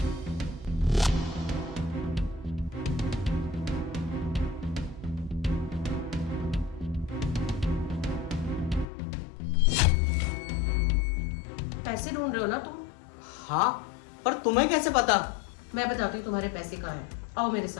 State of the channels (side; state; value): right; drops out; at 8.8 s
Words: पैसे ढूंढ रहे हो ना तुम? हाँ, पर तुम्हें कैसे पता? मैं बताती हूँ तुम्हारे पैसे कहाँ हैं। आओ मेरे